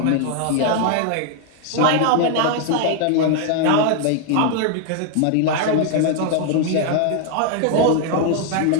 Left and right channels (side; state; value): both; different; correlation 0.00